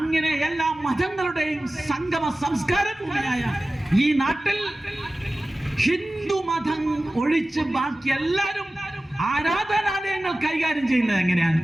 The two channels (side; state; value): both; normal; correlation 0.96